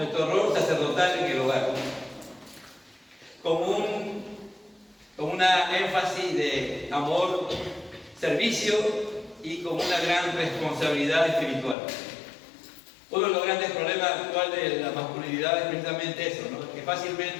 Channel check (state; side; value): drops out; right; at 11.8 s